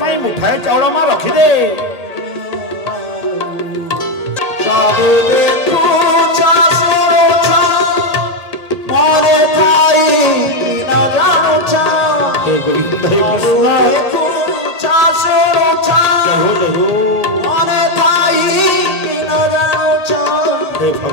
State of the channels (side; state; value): left; late; 1.8 ms